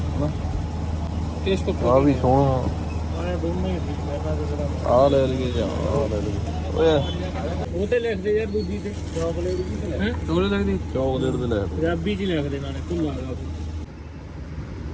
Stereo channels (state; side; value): identical; both; correlation 1.00